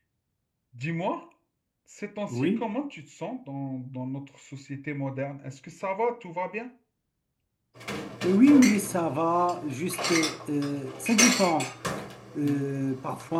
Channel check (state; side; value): identical; both; correlation 1.00